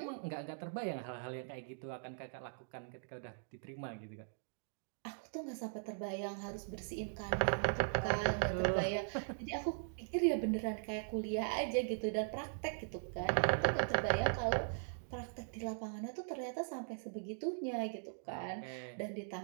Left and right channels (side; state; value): left; silent; digital silence